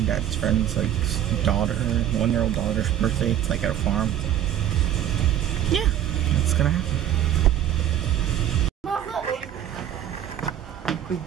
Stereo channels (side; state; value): left; quieter; 10.9 dB